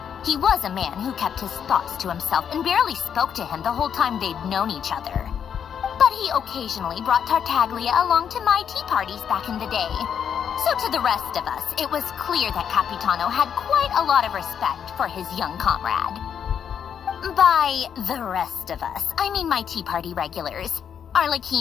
He was a man who kept his thoughts to himself and barely spoke to him the whole time they'd known each other. But he occasionally brought Tartaglia along to my tea parties back in the day. So to the rest of us, it was clear that Capitano had quite a lot of respect for his young comrade. By the rest of us, I mean my tea party regulars.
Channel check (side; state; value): right; quieter; 8.1 dB